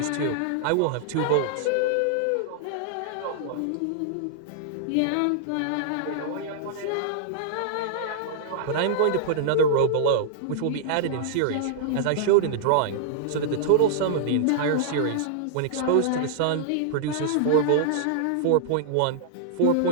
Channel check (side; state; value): both; different; correlation -0.01